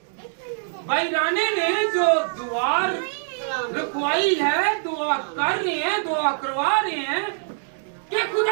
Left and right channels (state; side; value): silent; left; digital silence